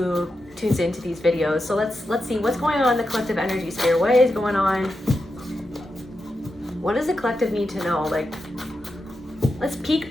tunes into these videos. So let's see what's going on in the collective energy sphere. What is going on? What does the collective need to know? Like, let's peek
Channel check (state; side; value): normal; both; correlation 0.88